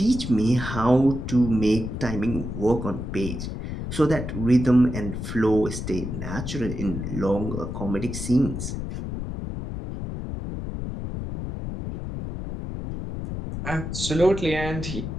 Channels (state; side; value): noise; left; rumble, 6 dB below the sound